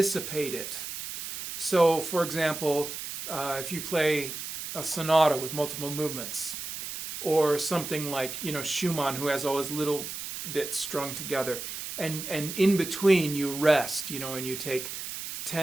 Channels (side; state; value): right; noise; hiss, 7 dB below the sound